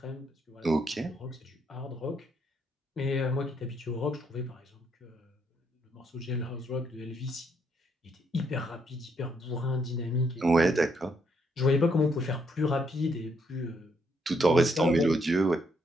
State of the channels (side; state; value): both; normal; correlation 0.74